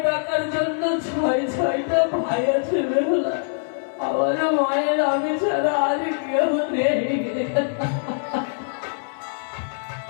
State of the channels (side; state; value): right; silent; 63 dB below the other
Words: ডাকার জন্য ছয়টা ভাই আছে বেহুলা। আমার মায়ের আমি ছাড়া আর কেউ নেই।